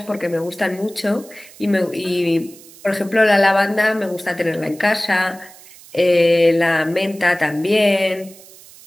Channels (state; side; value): noise; right; hiss, 21 dB below the sound